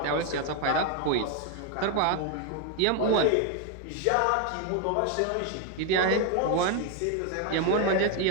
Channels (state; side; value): different; both; correlation 0.01